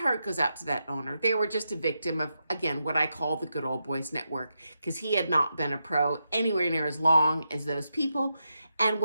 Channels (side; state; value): both; inverted; correlation -0.86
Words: goes out to that owner. They were just a victim of, again, what I call the good old boys network, because he had not been a pro anywhere near as long as those people, and